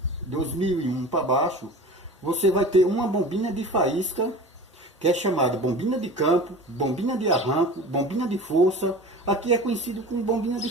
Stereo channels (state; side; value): normal; both; correlation 0.37